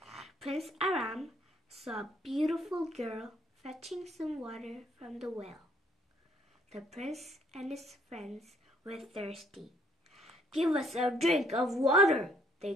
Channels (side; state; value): both; normal; correlation 0.65